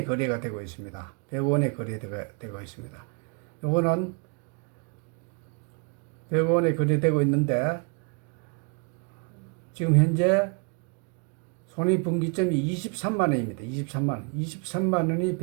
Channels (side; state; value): left; quieter; 35.4 dB